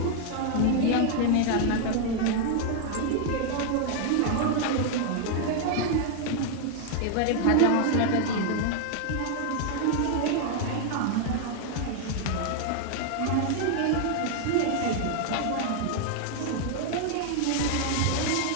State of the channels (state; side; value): different; both; correlation 0.00